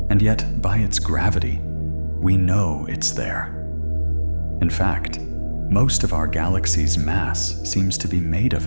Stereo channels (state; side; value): inverted; both; correlation -1.00